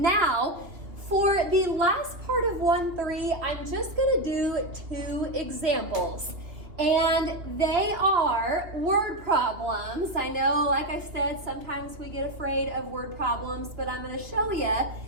for the last part of 1-3, I'm just going to do 2 examples. And they are word problems. I know, like I said, sometimes we get afraid of word problems, but I'm going to show you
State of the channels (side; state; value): left; late; 2.8 ms